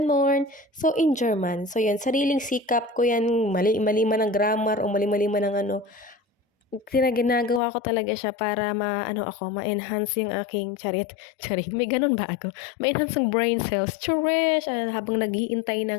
So, in German. So, yan, sariling sikap ko yan, mali-mali man ang grammar o mali-mali man ang ginagawa ko talaga siya para ma-ano ako, ma-enhance yung aking charit, may gano'n ba ako? Ma-enhance yung brain cells, charish! Habang naghihintay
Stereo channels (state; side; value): drops out; right; at 7.6 s